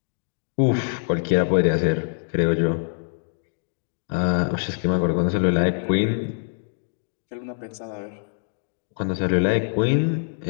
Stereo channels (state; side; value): silent; right; digital silence